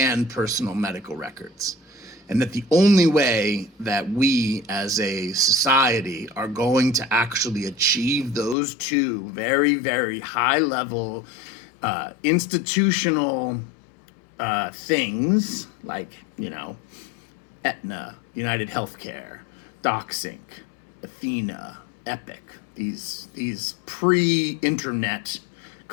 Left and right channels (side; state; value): right; drops out; at 8.6 s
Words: personal medical records. And that the only way that we as a society are going to actually achieve those two very, very high level institutional things like, Aetna, United Healthcare, DocSync, Athena, Epic, these pre-internet